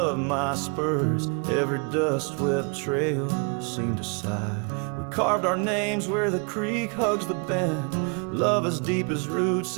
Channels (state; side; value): quieter; left; 36.3 dB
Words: of my spurs. Every dust-swept trail seemed to sigh. We carved our names where the creek hugs the bend. Love as deep as roots